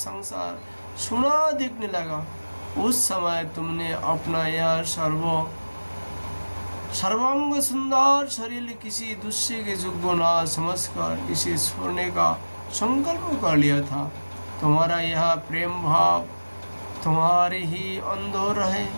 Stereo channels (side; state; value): both; inverted; correlation -1.00